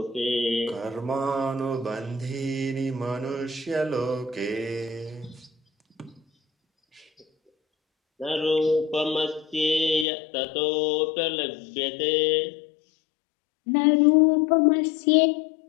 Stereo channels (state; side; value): drops out; right; at 10.1 s